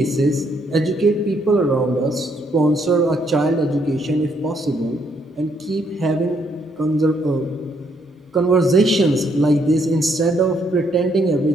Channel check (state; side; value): normal; both; correlation 0.72